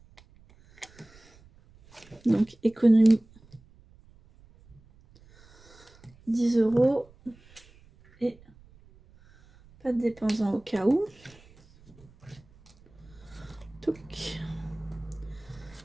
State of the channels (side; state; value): right; noise; rumble, 26 dB below the sound